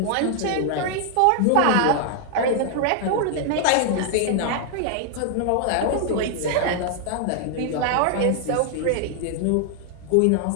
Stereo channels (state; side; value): different; both; correlation 0.00